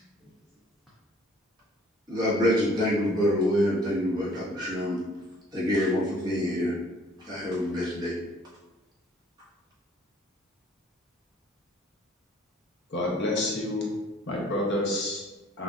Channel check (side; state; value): both; normal; correlation 0.57